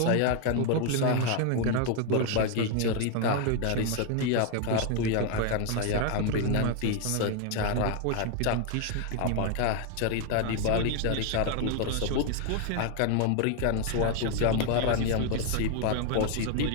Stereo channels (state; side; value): different; both; correlation 0.00